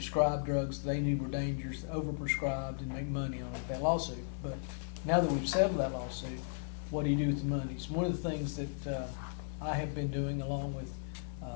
drugs they knew were dangerous, overprescribed, and make money on that lawsuit. But now that we've settled that lawsuit, what do you do with the money? So one of the things that I have been doing along with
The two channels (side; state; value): right; silent; 54 dB below the other